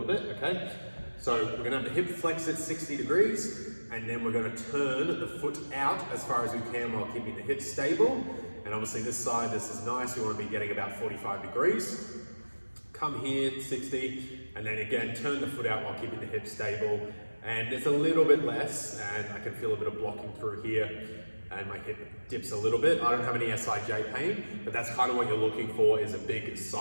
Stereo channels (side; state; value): both; inverted; correlation -1.00